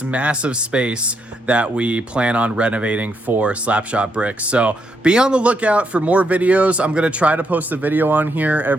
massive space that we plan on renovating for Slapshotbricks. So be on the lookout for more videos. I'm gonna try to post a video on here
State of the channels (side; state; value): both; normal; correlation 0.78